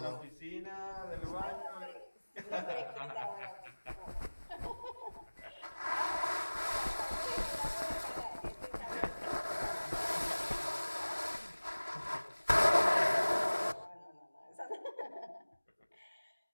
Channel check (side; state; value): both; inverted; correlation -1.00